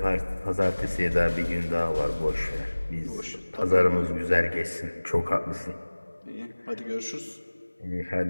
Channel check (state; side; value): inverted; both; correlation -1.00